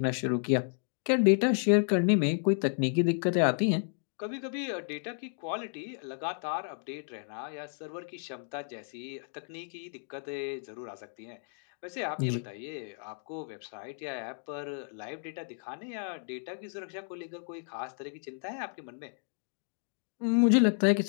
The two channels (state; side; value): silent; right; 56 dB below the other